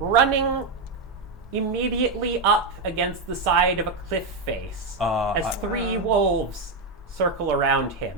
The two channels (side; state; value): left; quieter; 3.5 dB